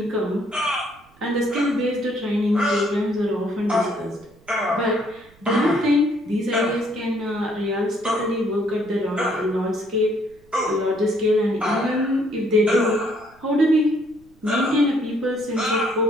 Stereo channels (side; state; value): right; noise; rumble, 29 dB below the sound